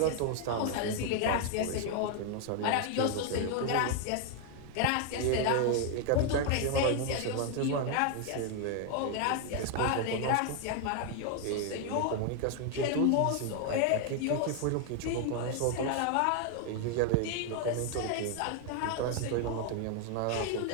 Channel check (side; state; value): both; different; correlation 0.00